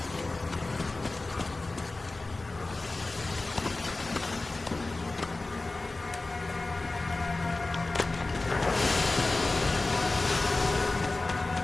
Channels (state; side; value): quieter; right; 3.2 dB